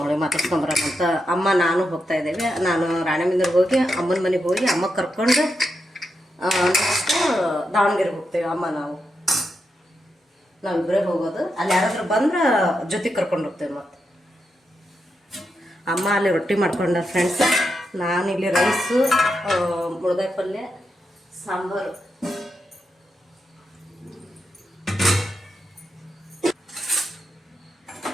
ಮಾತಾಡ್ಸ್ಕೊಂಬರೋಕ್ಕಂತ ಅಮ್ಮ ನಾನು ಹೋಗ್ತಾ ಇದ್ದೇವೆ. ನಾನು ರಾಣೆಬೆನ್ನೂರಿಗೆ ಹೋಗಿ ಅಮ್ಮನ ಮನೆಗೆ ಹೋಗಿ ಅಮ್ಮ ಕರ್ಕೊಂಡು ನೆಕ್ಸ್ಟ್ ದಾವಣಗೆರೆಗೆ ಹೋಗ್ತೇವೆ. ಅಮ್ಮ ನಾವಿಬ್ಬರೇ ಹೋಗೋದು. ಅಲ್ಲಿ ಯಾರಾದ್ರೂ ಬಂದ್ರೆ ಜೊತೆಗೆ ಕರ್ಕೊಂಡು ಹೋಗ್ತೇವೆ. ಮತ್ತು ಅಮ್ಮ ಅಲ್ಲಿ ರೊಟ್ಟಿ ಮಾಡ್ಕೊಂಡ ಫ್ರೆಂಡ್ಸ್, ನಾನಿಲ್ಲಿ ರೈಸು, ಮುಳಗಾಯಿ ಪಲ್ಯ, ಸಾಂಬಾರು.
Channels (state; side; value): normal; both; correlation 0.85